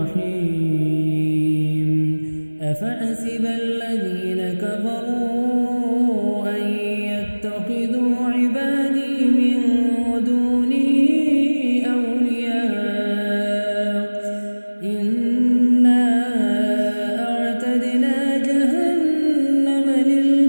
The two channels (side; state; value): both; inverted; correlation -1.00